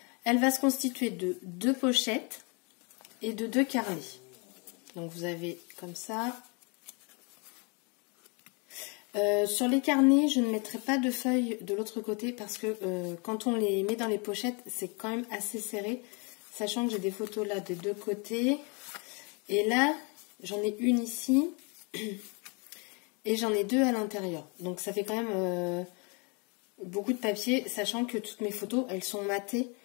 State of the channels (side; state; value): right; quieter; 32.8 dB